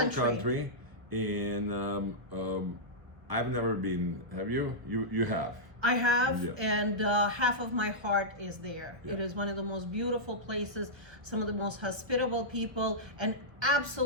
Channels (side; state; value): left; late; 1.3 ms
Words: country. And I've never been. Have you? You have. I have, Yeah. and half of my heart is there. Yeah. It is one of the most beautiful places, some of the most hospitable people, and